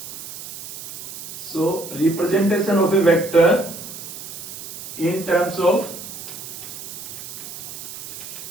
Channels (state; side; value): noise; right; hiss, 11 dB below the sound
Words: So representation of a vector in terms of